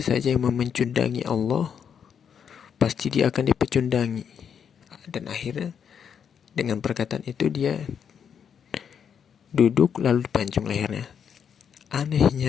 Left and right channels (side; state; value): right; quieter; 7.7 dB